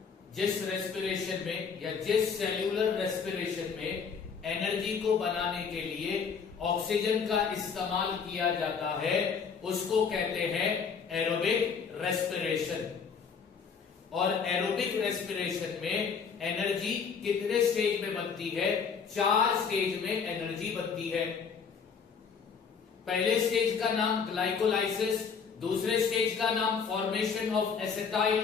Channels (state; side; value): quieter; right; 6.1 dB